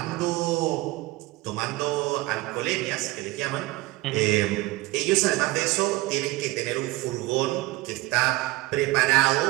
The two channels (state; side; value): quieter; left; 20.3 dB